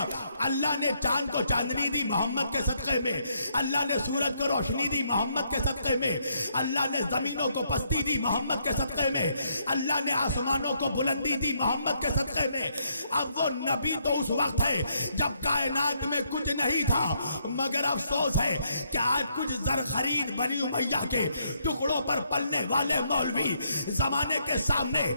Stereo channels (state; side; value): inverted; both; correlation -0.73